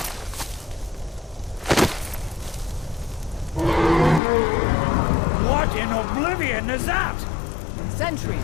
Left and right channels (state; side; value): drops out; right; at 4.2 s